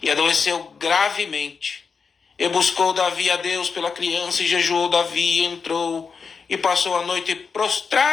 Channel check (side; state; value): right; quieter; 5.5 dB